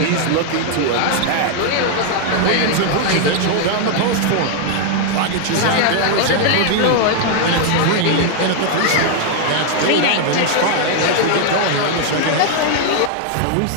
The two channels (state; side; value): different; both; correlation 0.00